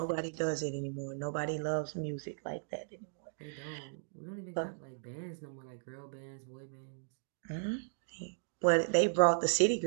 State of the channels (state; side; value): silent; left; digital silence